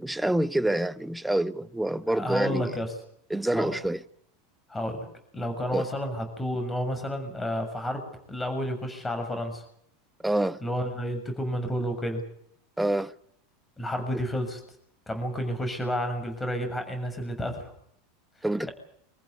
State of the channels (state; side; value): normal; both; correlation 0.85